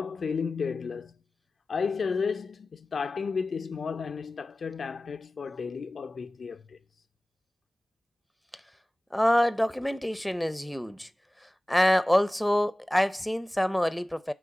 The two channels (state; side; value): normal; both; correlation 0.97